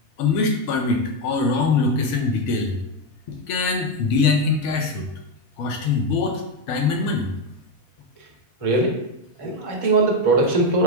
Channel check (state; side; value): late; right; 5.3 ms